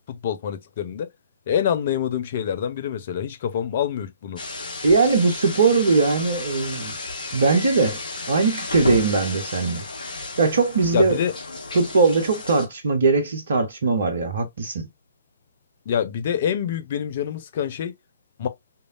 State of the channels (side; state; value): both; inverted; correlation -0.60